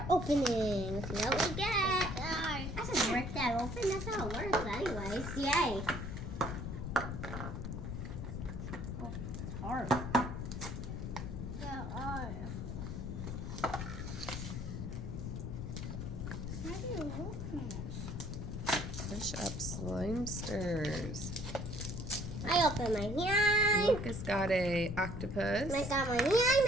opening. Let's see what we get. I just work that open. That's how it works anyways. Yay. Oh, it's hard. Yeah, how do you open this? Push up Slime-sters. I open my hand. Lucas got a octopus. I got my hand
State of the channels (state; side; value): noise; left; rumble, 5 dB below the sound